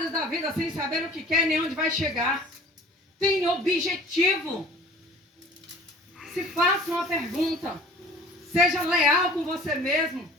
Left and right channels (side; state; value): both; normal; correlation 0.48